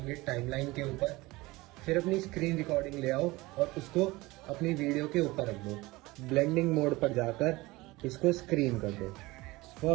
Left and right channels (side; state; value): left; quieter; 21.0 dB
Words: टाइमलाइन के ऊपर, फिर अपनी स्क्रीन रिकॉर्डिंग ले आओ और उसको अपनी वीडियो के ऊपर रख दो। ब्लेंडिंग मोड पर जाकर इसको स्क्रीन कर दो।